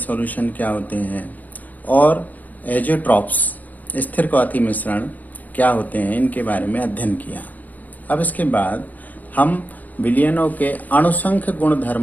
क्या होते हैं और एजोट्रॉप्स स्थिर क्वाथी मिश्रण क्या होते हैं, इनके बारे में अध्ययन किया। अब इसके बाद हम विलयनों के अणुसंख्य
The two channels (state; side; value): late; right; 0.081 ms